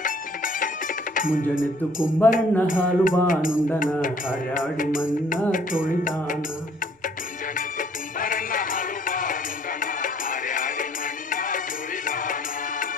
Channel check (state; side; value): normal; both; correlation 0.60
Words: ಮುಂಜಾನೆದ್ದು ಕುಂಬರಣ್ಣ ಹಾಲು ಬಾನುಂಡನ, ಹಾರ್ಯಾಡಿ ಮನ್ನ ತೊಳಿದಾನ.